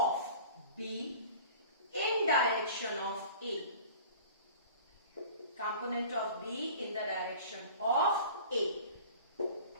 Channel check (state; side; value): inverted; both; correlation -0.43